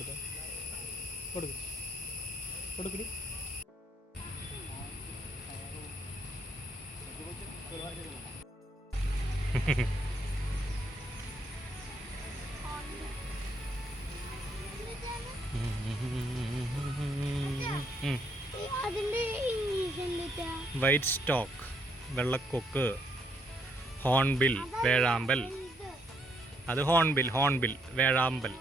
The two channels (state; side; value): normal; both; correlation 0.71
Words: കൊടുക്കടി. വൈറ്റ് സ്റ്റോക്ക്, വെള്ളക്കൊക്ക്, ഹോൺബിൽ, വേഴാമ്പൽ. അത് ഹോൺബിൽ വേഴാമ്പൽ.